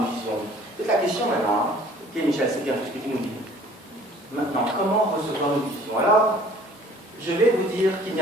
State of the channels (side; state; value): both; normal; correlation 0.53